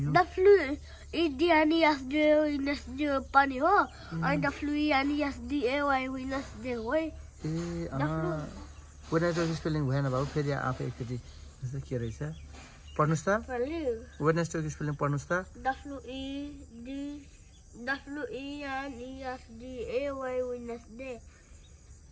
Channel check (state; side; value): identical; both; correlation 1.00